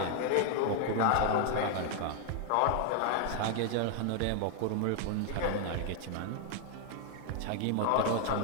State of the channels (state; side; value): different; both; correlation 0.00